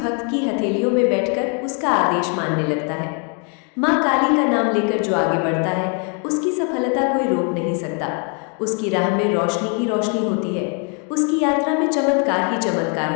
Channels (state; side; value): quieter; right; 38.7 dB